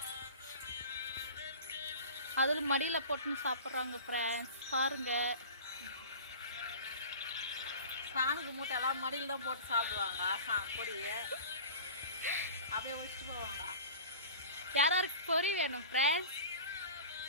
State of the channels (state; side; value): inverted; both; correlation -0.38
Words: அதில் மடியில் போட்டுன்னு சாப்பிட்றாங்க ஃப்ரெண்ட்ஸ். பாருங்க, சாமிக்கு மூட்டையெல்லாம் மடியில் தான் போட்டு சாப்பிடுவாங்க. பொரிய அப்படியே வச்சுட்டு போவாங்க. யாருக்கு பொறி வேணும் ஃப்ரெண்ட்ஸ்?